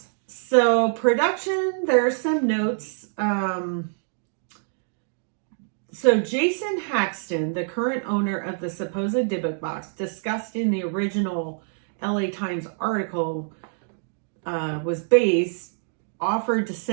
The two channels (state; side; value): silent; left; 61 dB below the other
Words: So production, there are some notes. So Jason Haxton, the current owner of the supposed Dybbuk box, discussed in the original LA Times article, was based, offered to